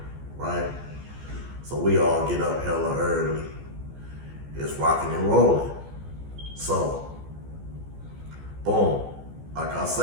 right? So we all get up hella early. It's rocking and rolling. So, boom, like I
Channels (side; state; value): left; late; 14 ms